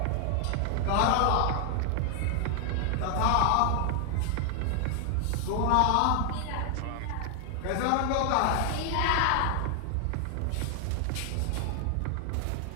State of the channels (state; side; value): different; both; correlation 0.00